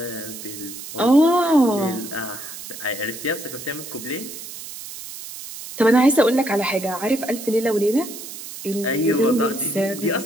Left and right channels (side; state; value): right; noise; hiss, 12 dB below the sound